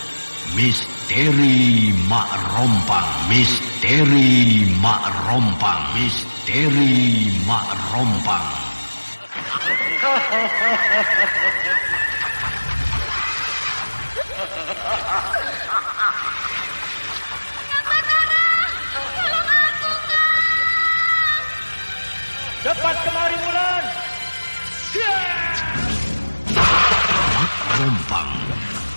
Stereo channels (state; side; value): inverted; both; correlation -1.00